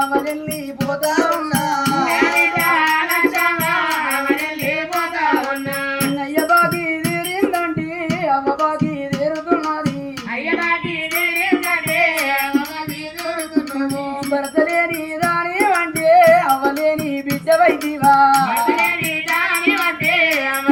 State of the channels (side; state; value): both; identical; correlation 1.00